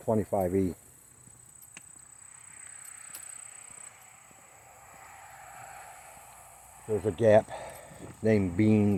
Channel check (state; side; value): identical; both; correlation 1.00